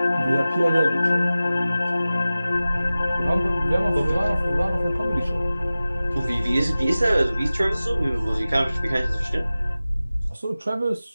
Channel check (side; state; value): both; inverted; correlation -0.96